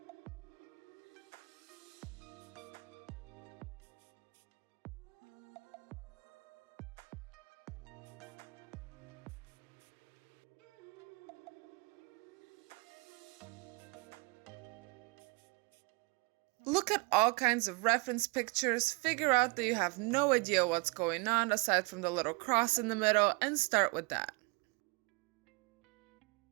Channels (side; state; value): left; quieter; 29.8 dB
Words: Look at all kinds of reference pictures, figure out that you have no idea what's going on aside from the little cross in the middle, and start with that.